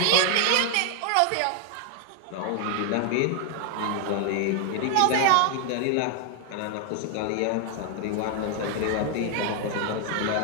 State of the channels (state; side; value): different; both; correlation 0.00